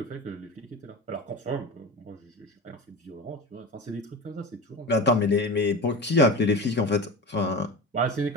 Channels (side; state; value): both; normal; correlation 0.29